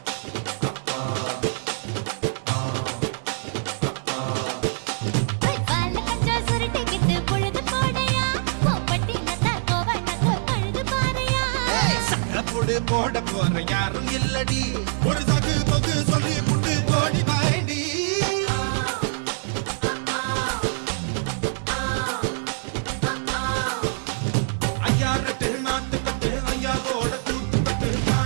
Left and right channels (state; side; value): silent; left; digital silence